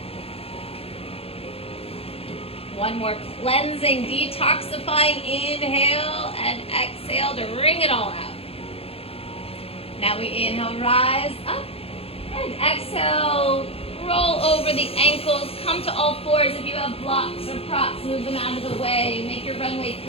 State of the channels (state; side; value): late; right; 0.28 ms